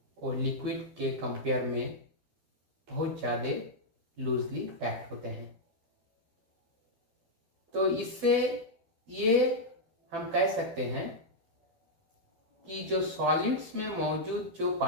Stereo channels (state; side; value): late; left; 12 ms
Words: वो लिक्विड के कंपेयर में बहुत ज़्यादा लूजली पैक्ड होते हैं। तो इससे ये हम कह सकते हैं कि जो सॉलिड्स में मौजूद जो